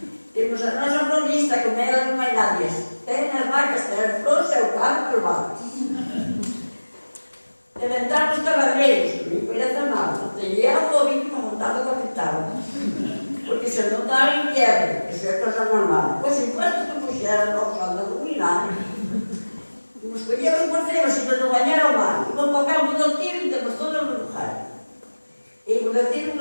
Temos a nossa florista, com ela não vai nada. Tem as vacas, tem as flores, é o carro, os vacas. Inventamos cavalreiros, me conhece mal. Tem eu o ouvido para montar o capital. Porque se não está em quebra, isso é coisa normal. Pois enquanto que puxeram nós a dominar, nos escolhemos por cima, se não banhar ao mar. E vamos para o campo do tiro e temos todas as lugares. E por aqui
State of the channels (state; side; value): inverted; both; correlation -1.00